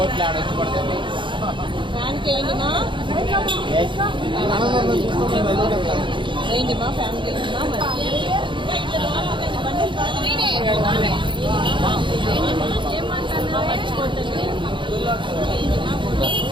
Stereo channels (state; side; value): late; left; 0.23 ms